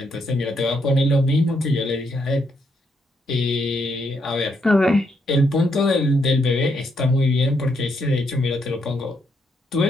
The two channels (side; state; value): both; normal; correlation 0.77